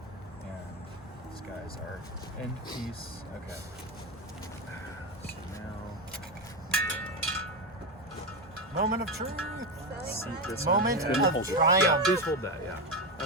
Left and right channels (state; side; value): normal; both; correlation 0.13